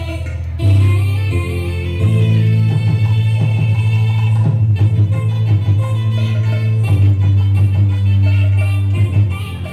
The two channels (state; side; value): identical; both; correlation 1.00